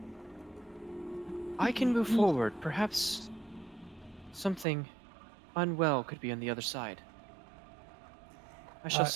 I can move forward. Perhaps something unwell could be on the other side. I shall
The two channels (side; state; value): left; drops out; at 4.7 s